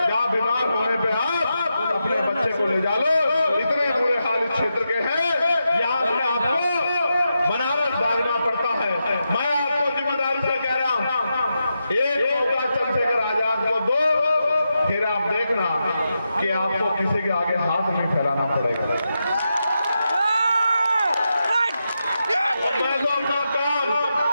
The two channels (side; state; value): both; inverted; correlation -0.87